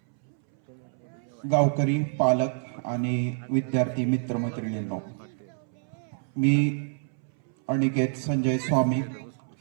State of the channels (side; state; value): left; silent; 60 dB below the other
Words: गावकरी, पालक आणि विद्यार्थी मित्रमैत्रिणींनो, मी अनिकेत संजय स्वामी,